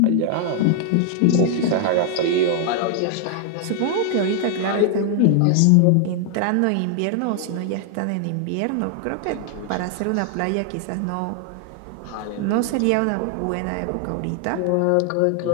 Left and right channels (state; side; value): different; both; correlation 0.00